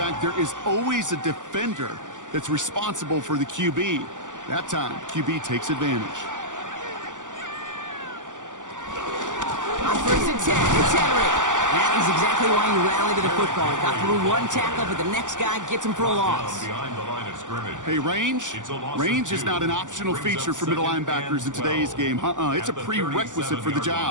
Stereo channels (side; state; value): left; late; 0.87 ms